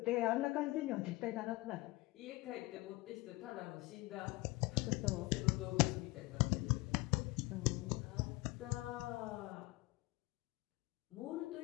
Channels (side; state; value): right; quieter; 21.7 dB